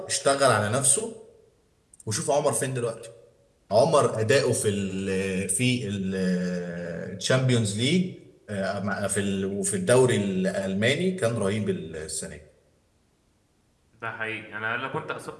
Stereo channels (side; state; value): both; identical; correlation 1.00